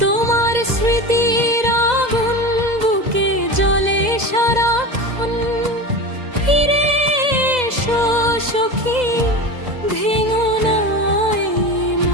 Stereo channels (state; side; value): late; left; 2.0 ms